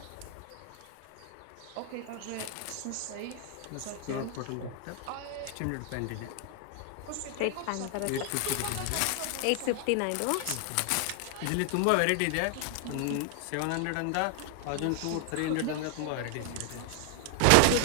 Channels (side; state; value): both; different; correlation 0.00